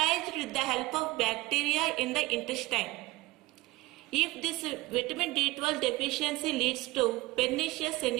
with the help of bacteria in the intestine. If this vitamin D12 deficiency leads to pernicious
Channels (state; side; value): quieter; left; 20.1 dB